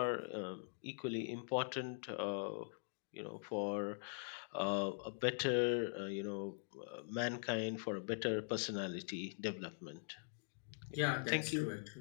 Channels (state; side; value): silent; right; digital silence